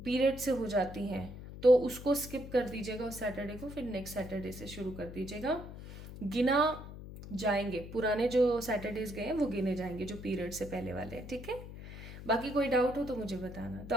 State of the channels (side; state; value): left; noise; hum, 12 dB below the sound